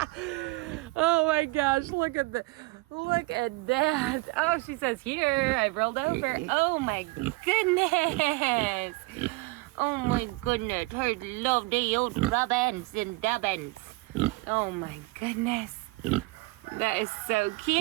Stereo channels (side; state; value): left; quieter; 23.4 dB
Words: Oh my gosh, look at that. Oh, she says, here, I rolled over. Oh my goodness. Oh my goodness, her lovely old rubbins and dubbins. Oh my goodness. That is so